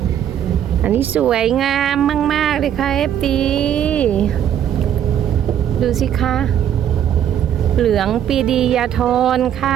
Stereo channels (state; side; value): quieter; left; 10.0 dB